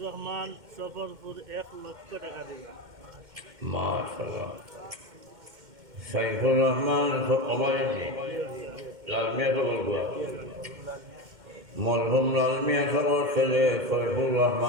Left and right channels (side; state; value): left; late; 2.1 ms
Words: রহমান সফরপুর 1 লক্ষ টাকা দিবা মাশাআল্লাহ সাইফুর রহমান সবাইজি লালমিয়া তো বলবো মরহুম লালমিয়া সবার ছেলে সাইফুর